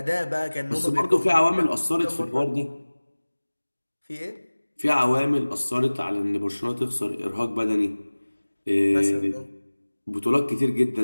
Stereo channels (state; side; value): inverted; both; correlation -1.00